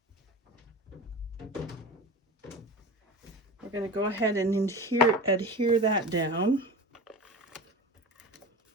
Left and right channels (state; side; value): normal; both; correlation 0.30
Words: we're going to go ahead and adhere that down.